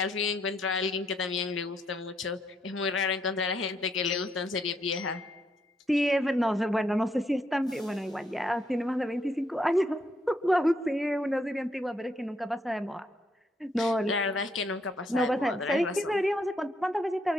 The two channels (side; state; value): both; normal; correlation 0.74